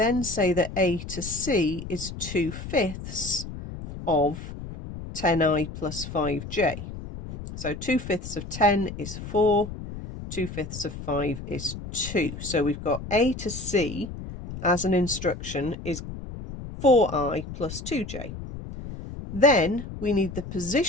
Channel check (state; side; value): noise; left; rumble, 10 dB below the sound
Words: say that A to C is 2/5 of 10i plus 5j. So 2/5 of 10 is 4, 2/5 of 5 is 2. So we've got A to C as an instruction is 4i plus 2j. Then we need the